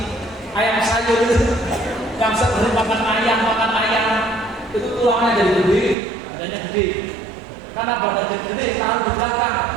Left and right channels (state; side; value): drops out; left; at 6.0 s